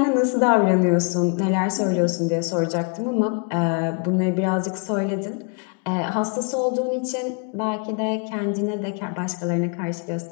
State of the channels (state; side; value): quieter; right; 36.0 dB